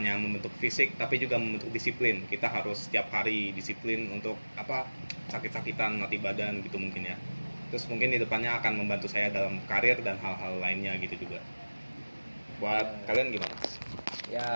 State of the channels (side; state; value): both; inverted; correlation -1.00